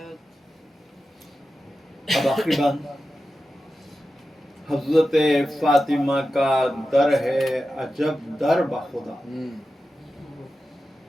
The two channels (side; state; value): both; normal; correlation 0.92